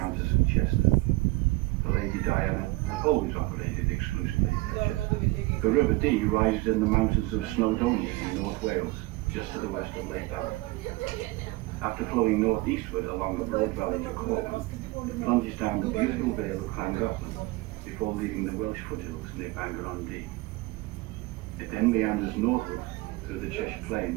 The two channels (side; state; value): left; quieter; 21.7 dB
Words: and Chester. The Lady Diana has always operated exclusively at Chester. The River Dee rises in the mountains of Snowdonia in North Wales, just to the west of Lake Ballard. After flowing northeastward along the broad valley to Corban, it plunges down the beautiful vale of Llangollen before leaving the Welsh foothills near Bangor-on-Dee. It then meanders northward through the Cheshire